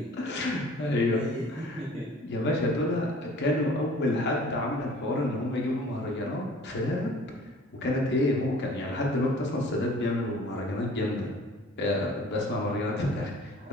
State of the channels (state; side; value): normal; both; correlation 0.49